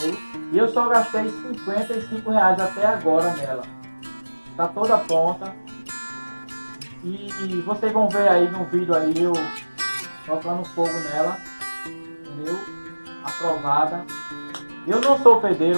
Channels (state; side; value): inverted; both; correlation -1.00